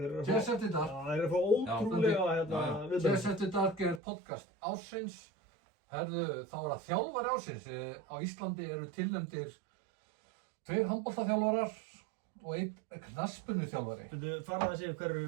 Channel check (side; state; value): left; drops out; at 4.0 s